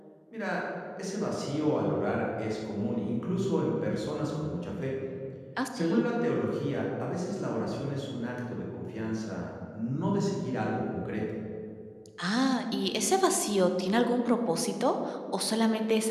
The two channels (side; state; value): both; identical; correlation 1.00